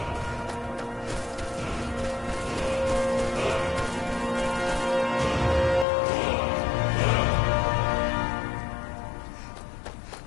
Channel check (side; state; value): right; drops out; at 5.9 s